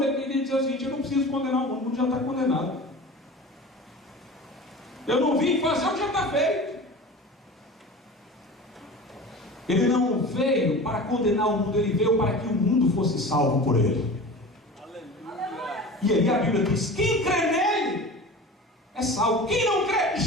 ele queria dizer o seguinte: eu não preciso condenar o mundo já está condenado. Eu não vim fazer o que já está feito. Ele não veio para condenar o mundo, ele veio para que o mundo fosse salvo por ele. E aí a Bíblia diz: quem crê nele é salvo. Quem não crê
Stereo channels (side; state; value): both; normal; correlation 0.35